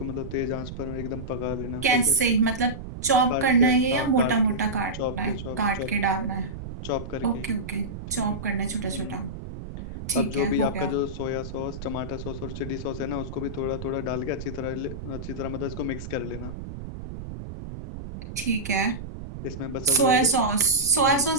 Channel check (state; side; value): noise; right; rumble, 10 dB below the sound